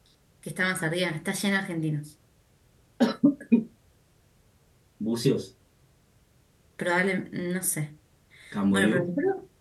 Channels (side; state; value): both; identical; correlation 1.00